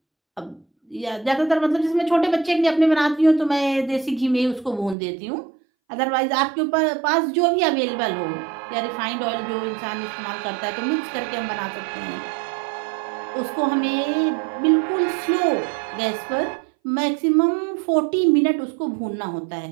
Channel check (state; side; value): drops out; left; at 5.0 s